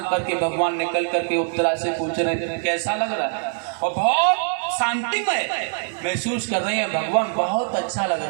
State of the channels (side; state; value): left; silent; 63 dB below the other